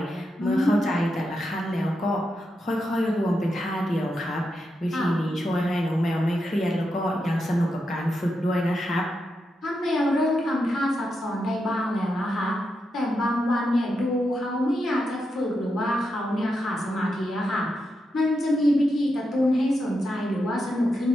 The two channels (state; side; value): normal; both; correlation 0.86